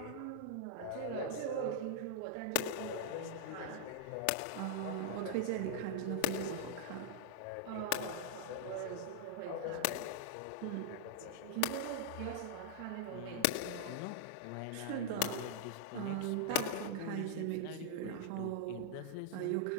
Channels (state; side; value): different; both; correlation -0.01